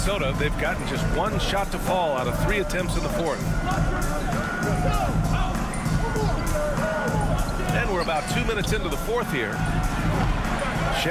they've gotten just 1 shot to fall out of 3 attempts in the 4th. And we're about 2 minutes into the 4th here.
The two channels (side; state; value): both; identical; correlation 1.00